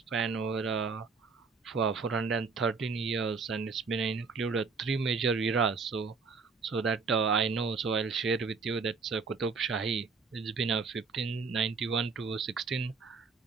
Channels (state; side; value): quieter; left; 4.9 dB